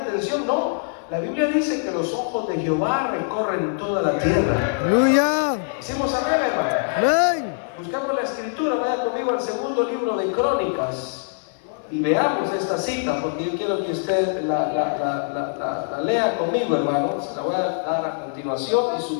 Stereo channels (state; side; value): silent; right; 59 dB below the other